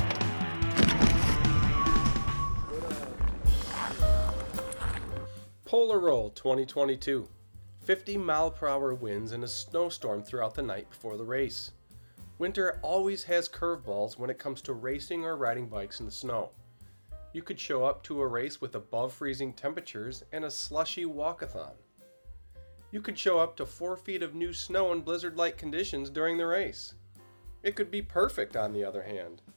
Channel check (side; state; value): both; inverted; correlation -1.00